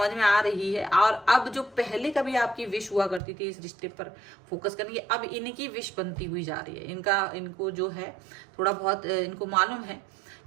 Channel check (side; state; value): left; drops out; at 3.2 s